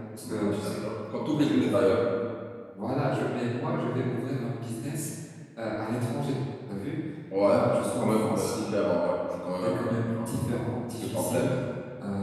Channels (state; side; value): identical; both; correlation 1.00